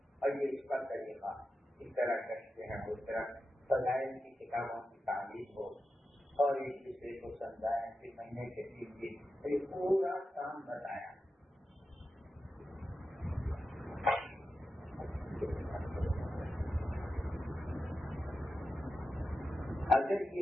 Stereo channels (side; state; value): both; normal; correlation 0.91